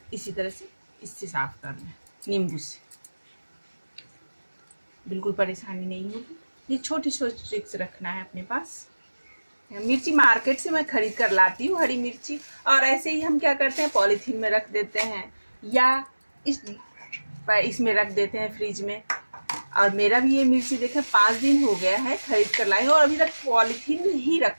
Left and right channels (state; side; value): inverted; both; correlation -1.00